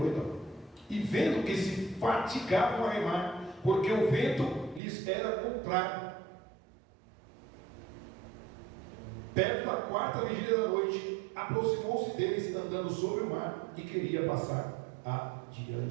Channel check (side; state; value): left; drops out; at 4.8 s